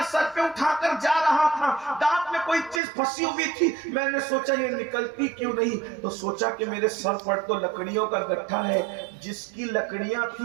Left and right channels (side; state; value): left; drops out; at 2.8 s